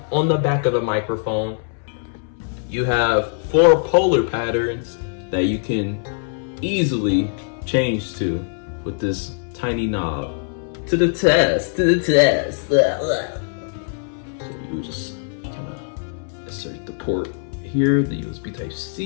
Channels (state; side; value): silent; right; 64 dB below the other